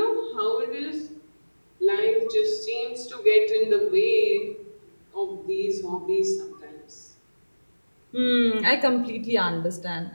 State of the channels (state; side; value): inverted; both; correlation -1.00